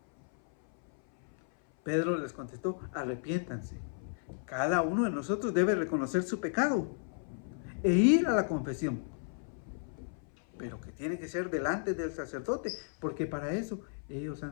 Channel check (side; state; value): right; silent; 55 dB below the other